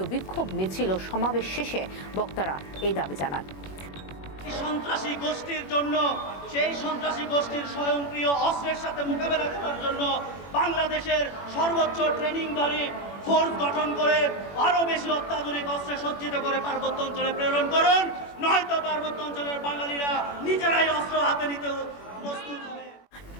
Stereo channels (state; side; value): late; right; 21 ms